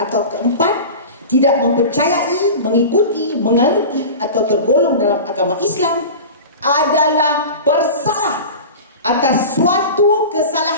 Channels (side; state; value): both; inverted; correlation -0.32